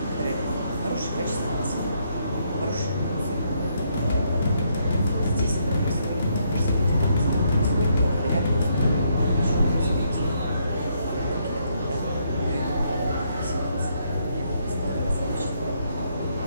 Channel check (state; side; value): inverted; both; correlation -0.74